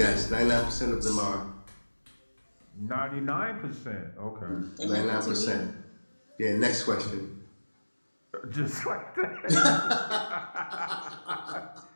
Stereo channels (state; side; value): inverted; both; correlation -1.00